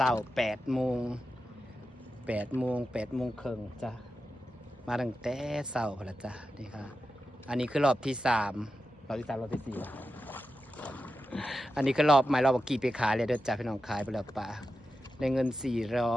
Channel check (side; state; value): both; normal; correlation 0.91